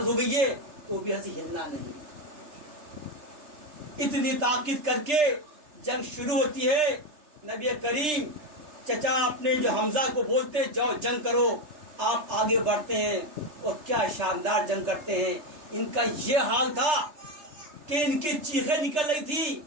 ہو گئی ہے تو بھی ایسے ہلنا نہیں۔ اتنی تاکید کر کے جنگ شروع ہوتی ہے۔ نبی کریم چچا اپنے جو حمزہ کو بولتے جاؤ جنگ کرو، آپ آگے بڑھتے ہیں اور کیا شاندار جنگ کرتے ہیں۔ ان کا یہ حال تھا کہ ان کی چیخیں نکل رہی تھی،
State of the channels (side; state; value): left; late; 3.3 ms